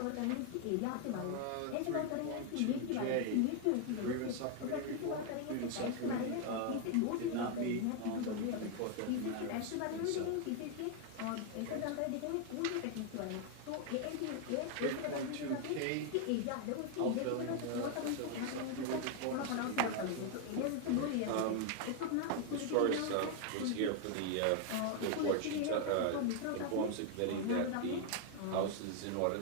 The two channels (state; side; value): different; both; correlation 0.00